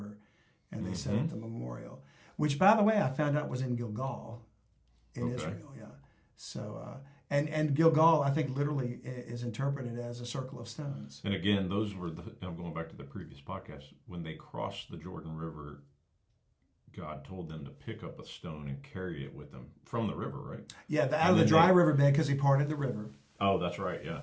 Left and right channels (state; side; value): identical; both; correlation 1.00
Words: and they set up the memorial, which, by the way, I found out was in Gilgal in Israel. So, and Gilgal, I think, literally is interpreted as a circle of stones. And again, those were, I'm going back to the previous podcast, when they crossed the Jordan River, God told them to pick up a stone and carry it with them from the river, right? Yeah, out of the dry riverbed, because he parted the river. Oh, that's right, yeah.